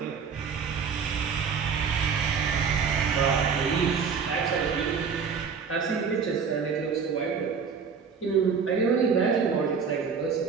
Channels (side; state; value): left; quieter; 6.0 dB